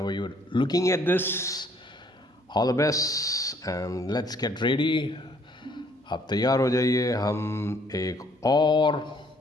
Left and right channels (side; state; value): both; normal; correlation 0.63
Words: you're looking at this. All the best and let's get ready. आप तैयार हो जाइए. हम एक और